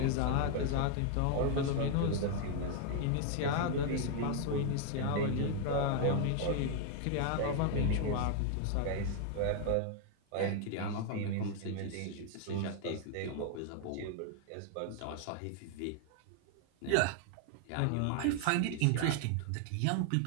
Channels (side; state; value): both; different; correlation 0.00